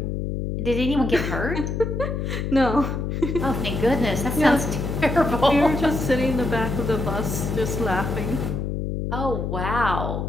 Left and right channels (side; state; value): left; noise; hum, 2 dB below the sound